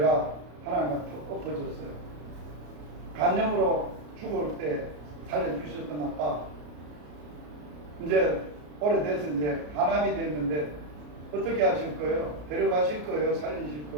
하나님한테 엎어졌어요. 간염으로 죽을 때 살려주셨던 아빠, 이제 오래돼서 이제 간암이 됐는데 어떻게 하실 거예요? 데려가실 거예요? 살리실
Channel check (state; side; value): late; left; 34 ms